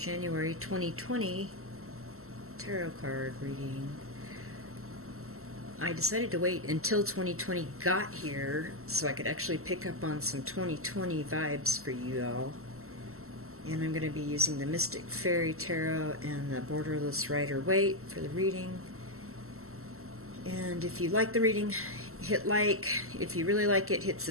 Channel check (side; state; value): left; late; 0.63 ms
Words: 2020 tarot card reading. I decided to wait until 2020 got here so I could actually pick up on some 2020 vibes for you all. And I'm going to be using the Mystic Fairy Tarot and the Borderless Rider-Waite for the reading. And if you like the reading, hit like. If you really like it, hit